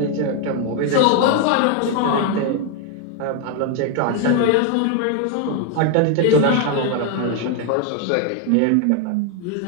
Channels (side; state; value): both; different; correlation 0.01